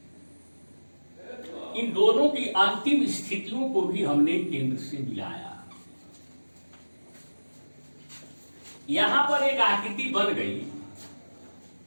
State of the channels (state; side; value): inverted; both; correlation -1.00